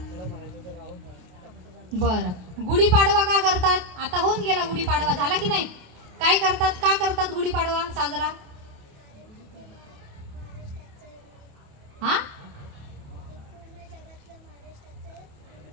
बरं, गुढीपाडवा का करतात? आता होऊन गेला गुढीपाडवा, झाला की नाही? काय करतात? का करतात गुढीपाडवा साजरा? हा,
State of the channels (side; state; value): left; late; 28 ms